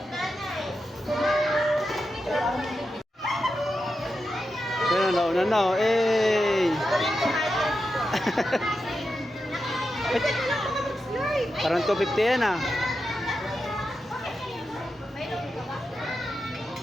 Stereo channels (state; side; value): normal; both; correlation 0.89